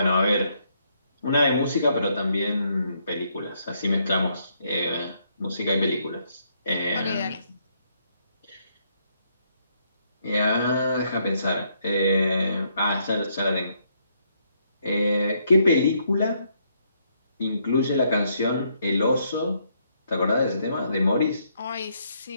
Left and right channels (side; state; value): both; inverted; correlation -0.73